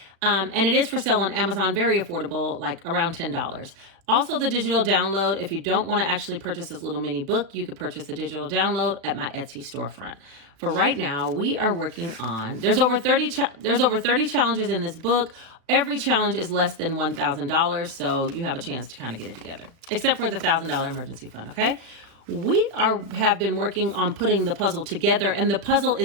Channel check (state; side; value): late; left; 36 ms